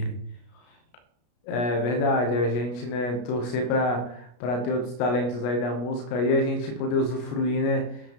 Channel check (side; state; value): right; late; 33 ms